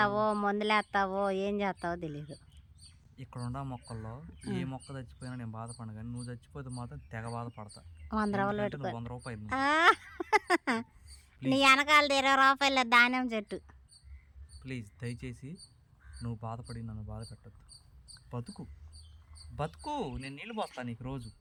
మందులేస్తావో ఏం చేస్తావో తెలీదు. ఇక్కడ ఉన్న మొక్కల్లో ఏ మొక్క చచ్చిపోయినా నేను బాధపడను, కానీ నువ్వు చచ్చిపోతే మాత్రం తెగ బాధపడతా. 100 రూపాయలు పెట్టుకో. 100 రూపాయలు నీ వెనకాలది 20 రూపాయలు ధాన్యం చెట్టు. ప్లీజ్ దయచేసి నువ్వు బాధపడి నన్ను బాధ పెట్టద్దు. బతుకు బతుకు, నేను నీళ్ళు పోస్తాను నీకు రోజు.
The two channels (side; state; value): both; identical; correlation 1.00